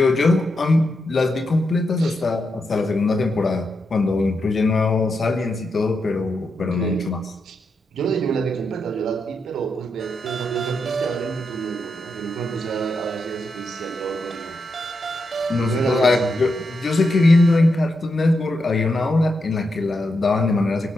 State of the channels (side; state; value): both; normal; correlation 0.85